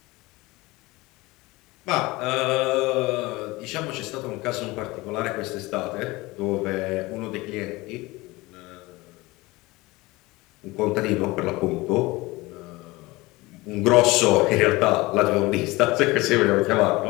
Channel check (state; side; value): quieter; right; 21.5 dB